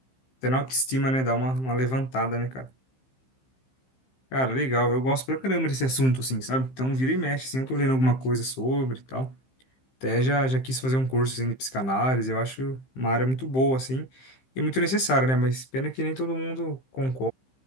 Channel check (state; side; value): late; right; 15 ms